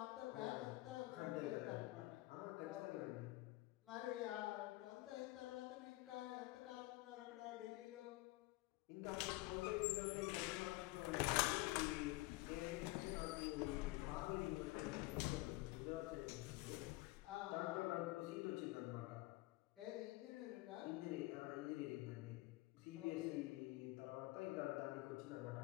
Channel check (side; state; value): right; quieter; 20.4 dB